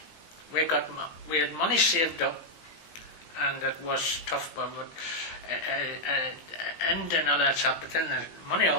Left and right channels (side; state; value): right; late; 18 ms